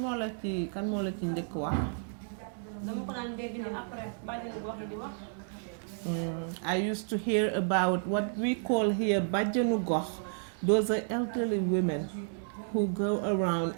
moo la ci njëkk wax? I used to hear about what we call here bajjanu gox. Those are elderly women who go around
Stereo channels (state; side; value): silent; left; 57 dB below the other